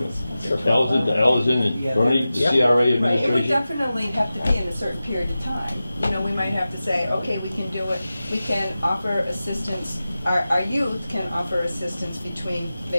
Allison and Bernie, the CRA Right, it would administration. definitely have to be in a certain period of time. You know, we might have to say, okay, we can do it, we can offer assistance, our youth can offer assistance between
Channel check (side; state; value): both; inverted; correlation -0.95